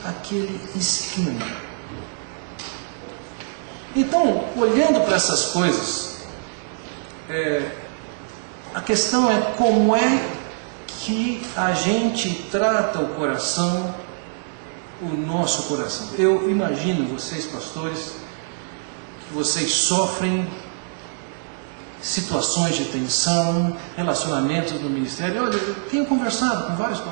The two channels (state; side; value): silent; left; digital silence